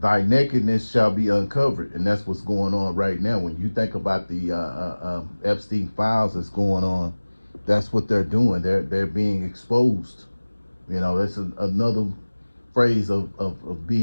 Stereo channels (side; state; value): both; inverted; correlation -1.00